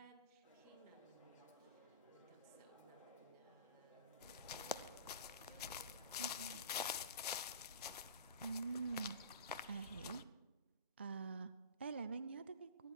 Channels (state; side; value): inverted; both; correlation -0.36